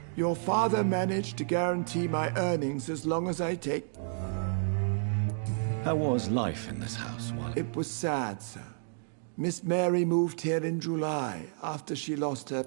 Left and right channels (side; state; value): left; silent; digital silence